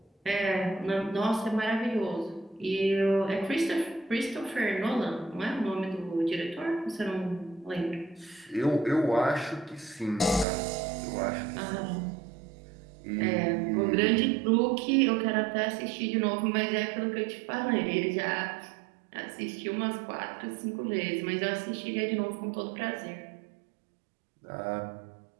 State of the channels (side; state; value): left; drops out; at 10.5 s